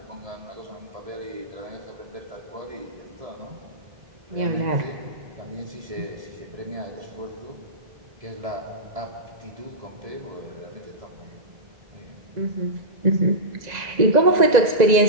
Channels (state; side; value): late; left; 2.0 ms